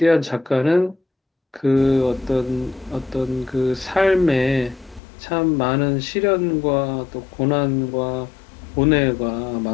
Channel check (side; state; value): right; drops out; at 5.0 s